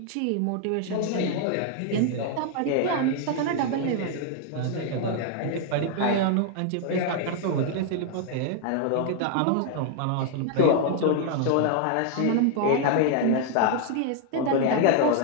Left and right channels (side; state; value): both; different; correlation 0.00